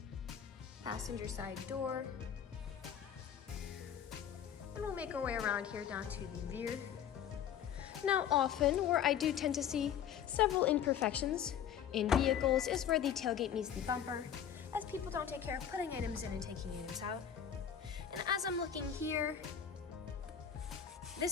passenger side door. And we'll make our way around here down to the rear. Now often, where I do tend to see several imperfections in vehicles is where the tailgate meets the bumper, as people don't take care of putting items in and taking items out. And as I'm looking here,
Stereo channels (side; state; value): right; quieter; 9.0 dB